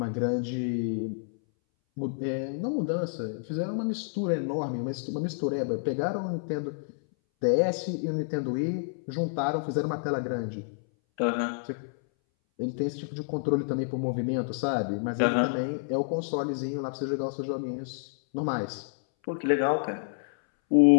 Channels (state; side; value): silent; right; 59 dB below the other